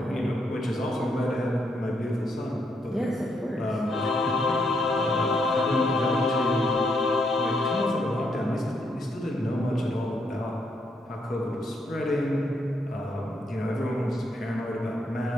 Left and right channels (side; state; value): both; normal; correlation 0.76